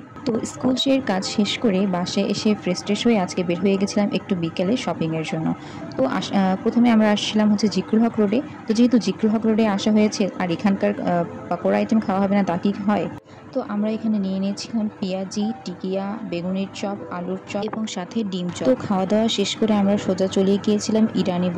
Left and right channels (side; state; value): both; identical; correlation 1.00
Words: তো স্কুল কাজ শেষ করে বাসায় এসে ফ্রেশ ট্রেশ হয়ে আজকে বের হয়ে গেছিলাম একটু বিকেলে শপিংয়ের জন্য। তো প্রথমে আমরা আসছিলাম হচ্ছে জিকরুল হক রোডে। তো যেহেতু জিকরুল হক রোডে আসা হয়েছে আর এখানকার পাকোড়া আইটেম খাওয়া হবে না তা কি হয়, তো আমরা এখানে নিয়ে নিয়েছিলাম পেঁয়াজি, টিকিয়া, বেগুনের চপ, আলুর চপ এবং সাথে ডিম চপ। তো খাওয়া দাওয়া শেষ করে আমরা সোজা চলে গিয়েছিলাম ইরানি